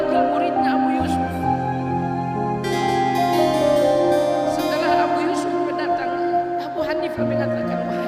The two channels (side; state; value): both; identical; correlation 1.00